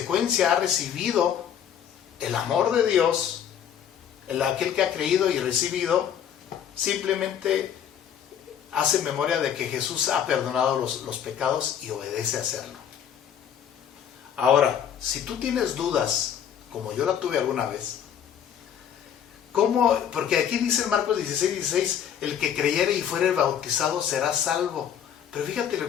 ha recibido el amor de Dios, aquel que ha creído y recibido, simplemente hace memoria de que Jesús ha perdonado los pecados y obedece a hacerlo. Ahora, si tú tienes dudas, como yo la tuve alguna vez, ¿cómo? Porque aquí dice en Marcos 16:16, el que creyere y fuere bautizado será salvo. Pero fíjate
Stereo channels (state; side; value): quieter; right; 9.0 dB